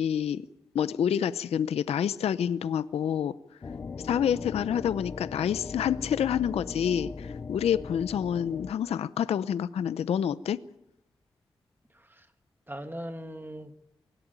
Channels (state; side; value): quieter; right; 8.2 dB